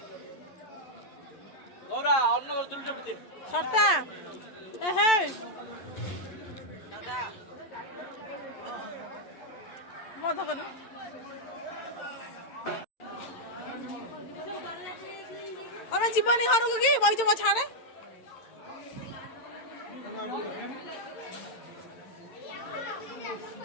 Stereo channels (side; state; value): right; late; 11 ms